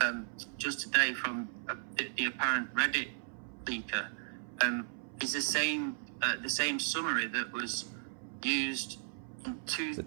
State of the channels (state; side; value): silent; left; 54 dB below the other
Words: just today from the apparent Reddit leaker is the same the same summary that was used in